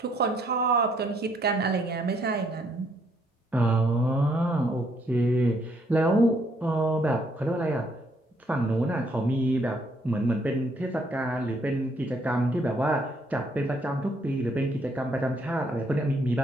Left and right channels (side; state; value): both; normal; correlation 0.69